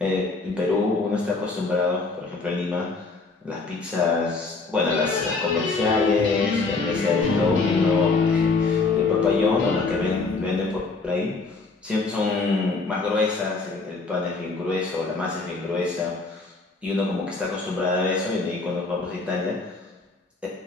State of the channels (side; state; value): right; quieter; 3.9 dB